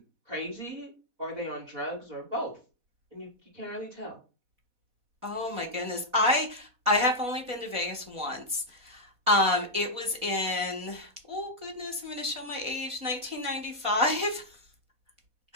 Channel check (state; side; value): late; left; 4.1 ms